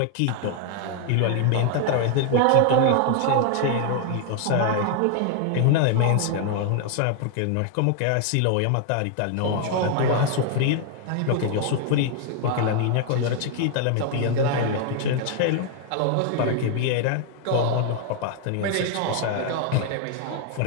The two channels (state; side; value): different; both; correlation 0.00